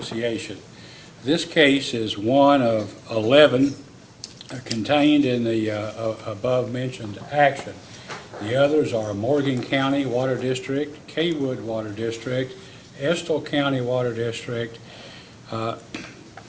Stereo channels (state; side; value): identical; both; correlation 1.00